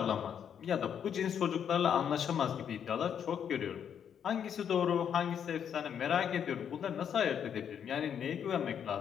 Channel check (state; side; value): quieter; right; 8.4 dB